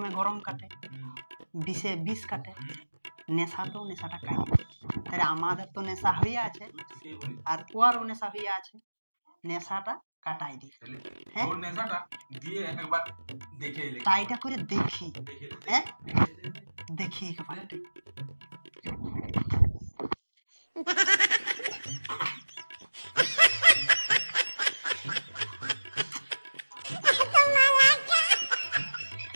গরম কাটে, বিষে বিষ কাটে, নেশাতেও নেশাটা কাটে। তাহলে আমাদের তো নেশা হয়ে আছে আর ওরও নেশা হয়ে আছে, নেশাটা কাটাই দি। হ্যাঁ ওর নেশাটা দিয়ে একবার দেখে এলে। ট্রাইটা করে দেখি। হ্যাঁ দেখি একবার।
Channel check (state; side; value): inverted; both; correlation -1.00